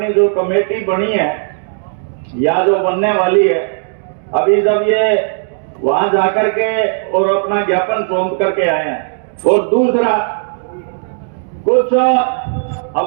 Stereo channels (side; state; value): left; silent; digital silence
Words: जो कमेटी बनी है या जो बनने वाली है, अभी जब ये वहां जाकर के और अपना ज्ञापन सौंप करके आए हैं, और दूसरा कुछ